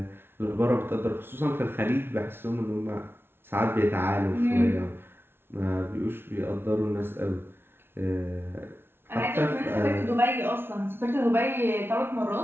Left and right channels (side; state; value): left; late; 0.11 ms